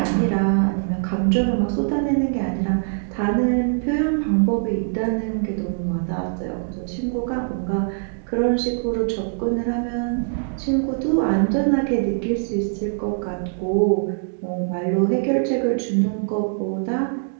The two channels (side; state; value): left; silent; digital silence